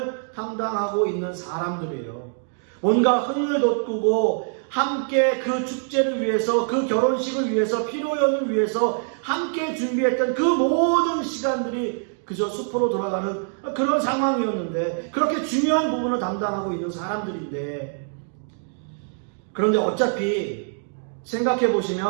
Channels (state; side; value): silent; left; 63 dB below the other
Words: 담당하고 있는 사람들이에요. 뭔가 흥을 돋구고 함께 그 축제를 위해서, 그 결혼식을 위해서, 피로연을 위해서 함께 준비했던 그 모든 시간들이 그저 숲으로 돌아가는 그런 상황이었는데, 그렇게 중요한 부분을 담당하고 있는 사람들인데, 그런데 어차피 생각해